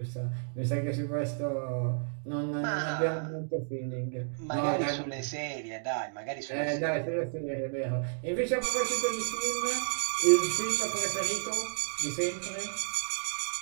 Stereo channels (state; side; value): silent; left; digital silence